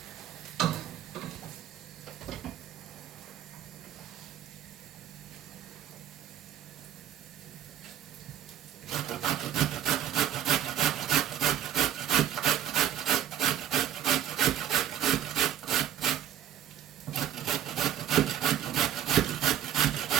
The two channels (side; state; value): left; quieter; 10.7 dB